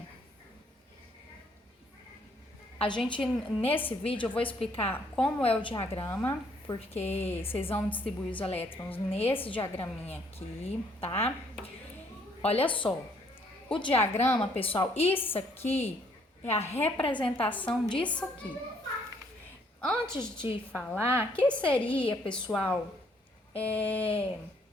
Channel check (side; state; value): both; normal; correlation 0.66